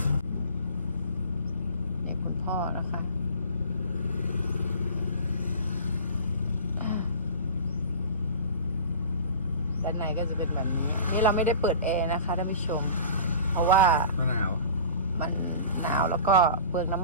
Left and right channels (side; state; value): both; inverted; correlation -0.39